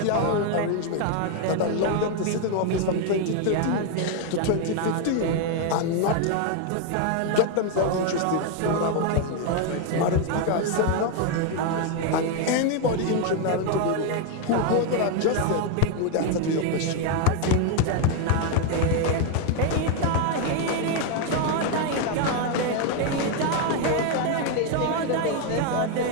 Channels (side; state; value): both; different; correlation 0.01